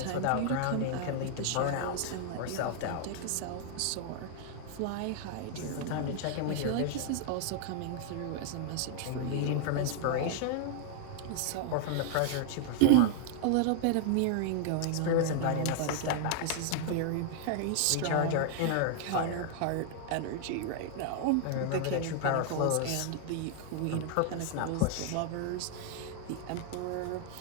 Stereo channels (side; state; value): both; different; correlation 0.00